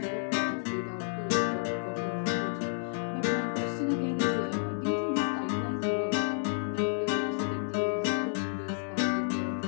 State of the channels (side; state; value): right; silent; 57 dB below the other